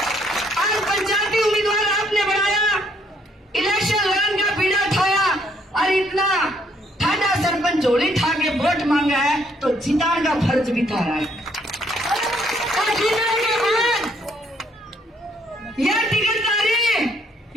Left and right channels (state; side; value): normal; both; correlation 0.68